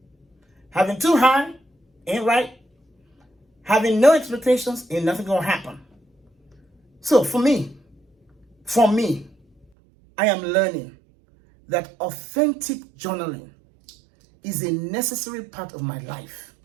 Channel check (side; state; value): left; drops out; at 9.7 s